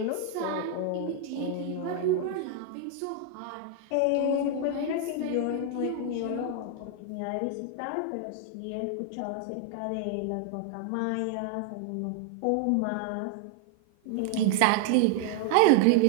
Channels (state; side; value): different; both; correlation 0.00